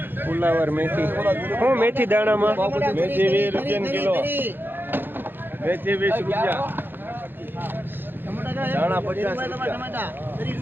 फुलावर, मेथी। हूँ मेथी दाणा में मेथी 20 रुपया किलो, मेथी 20 रुपया, दाणा 50 रुपया,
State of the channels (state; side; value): late; left; 0.097 ms